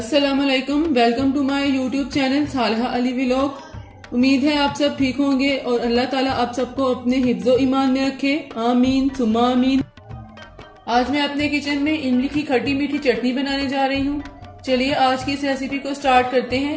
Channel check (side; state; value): both; identical; correlation 1.00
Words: वालेकुम, welcome to my YouTube channel Salha Ali vlog. उम्मीद है आप सब ठीक होंगे और अल्लाह ताला आप सबको अपने हिफ्ज़ो ईमान में रखे, आमीन सुम्मा आमीन। आज मैं अपने किचन में इमली की खट्टी मीठी चटनी बनाने जा रही हूँ। चलिए आज की इस रेसिपी को स्टार्ट करते